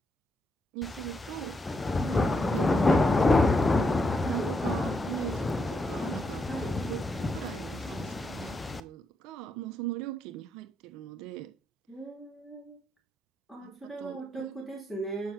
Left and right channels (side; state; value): both; normal; correlation 0.81